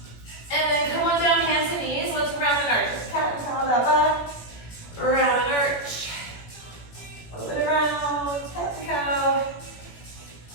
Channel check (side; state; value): right; late; 17 ms